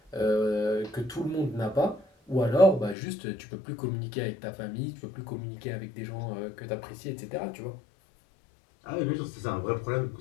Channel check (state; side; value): drops out; right; at 3.0 s